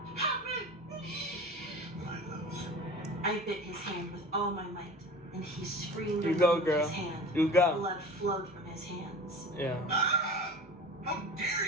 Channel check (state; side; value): normal; both; correlation 0.38